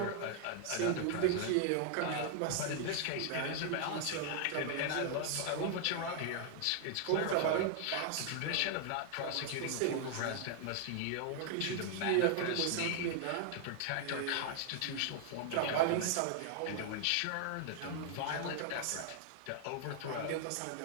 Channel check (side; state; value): both; different; correlation 0.00